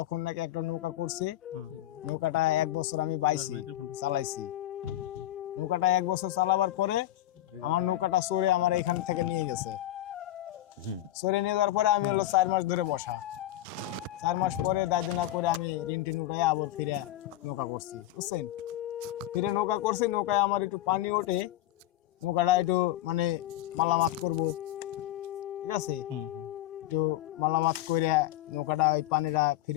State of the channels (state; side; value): quieter; right; 14.3 dB